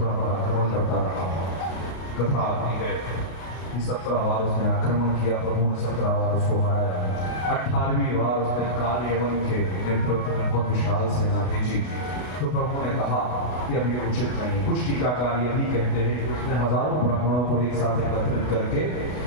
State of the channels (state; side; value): late; right; 32 ms